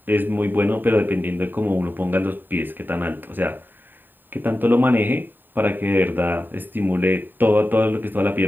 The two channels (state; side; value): late; left; 0.092 ms